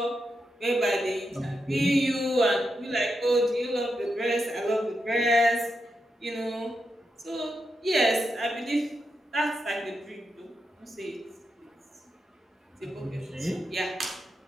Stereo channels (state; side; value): normal; both; correlation 0.85